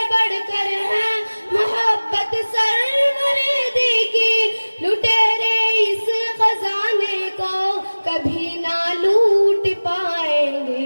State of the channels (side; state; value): both; inverted; correlation -1.00